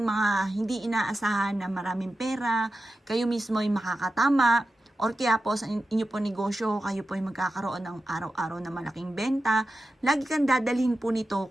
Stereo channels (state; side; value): normal; both; correlation 0.92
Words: mga hindi inaasahan na maraming pera. Kayo mismo ay makakatama. Or kaya po sa inyo po negosyo, kayo po ay magkakaroon ng araw-araw na malaking benta. Lagi kang dadalhin po nito